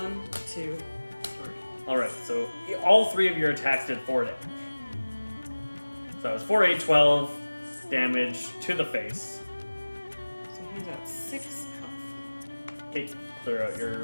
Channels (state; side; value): inverted; both; correlation -1.00